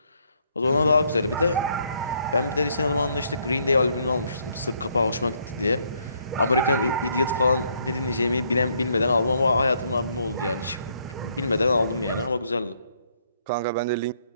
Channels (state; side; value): inverted; both; correlation -0.70